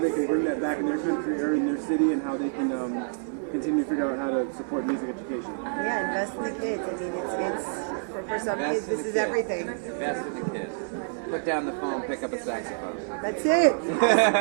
can bring that back in their country or in their city, and how they can continue to figure out how to support music education. Yeah, invest in the kids. I mean, it's for some kids, this is everything. Invest in the kids. Put down the phone, pick up a saxophone. That's it.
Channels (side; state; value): left; silent; 60 dB below the other